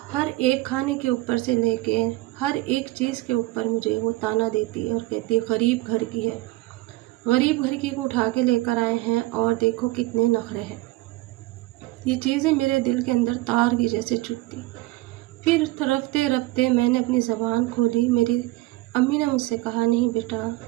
हर एक खाने के ऊपर से लेके हर एक चीज़ के ऊपर मुझे वो ताना देती और कहती गरीब घर की है, गरीब घर की को उठा के लेकर आए हैं और देखो कितने नखरे हैं। ये चीज़ें मेरे दिल के अंदर तार की जैसे चुभती। फिर रफ्ते रफ्ते मैंने अपनी ज़बान खोली। मेरी अम्मी ने मुझसे कहा नहीं बेटा,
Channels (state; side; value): quieter; left; 19.3 dB